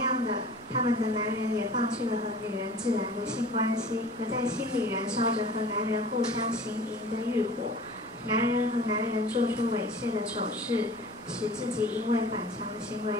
的，他们的男人也放弃了和女人自然的性关系，而在心里燃烧着和男人互相行淫的欲火。男人和男人做出猥亵的丑事，使自己因为反常的行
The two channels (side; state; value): both; normal; correlation 0.43